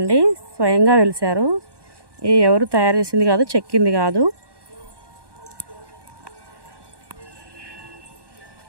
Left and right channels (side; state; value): left; late; 1.1 ms